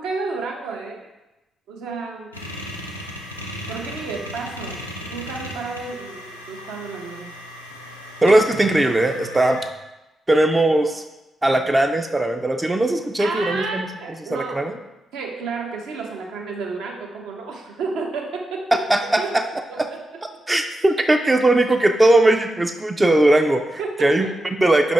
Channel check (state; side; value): normal; both; correlation 0.89